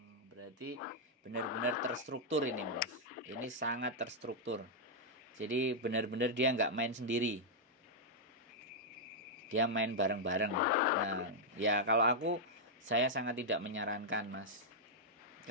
Berarti benar-benar terstruktur ini Mas. Ini sangat terstruktur. Jadi benar-benar dia nggak main sendiri. Dia main bareng-bareng. Nah, ya kalau saya sangat tidak menyarankan Mas.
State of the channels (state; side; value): normal; both; correlation -0.06